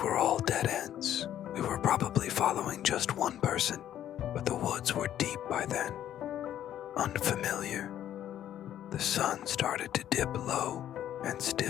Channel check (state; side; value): quieter; right; 11.2 dB